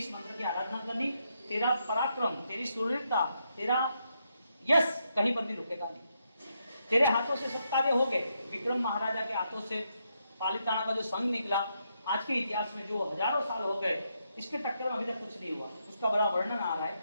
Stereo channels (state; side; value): inverted; both; correlation -0.80